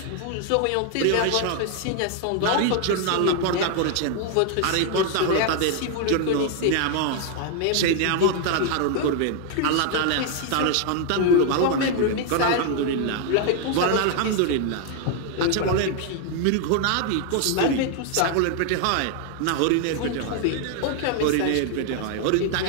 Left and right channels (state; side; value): different; both; correlation 0.00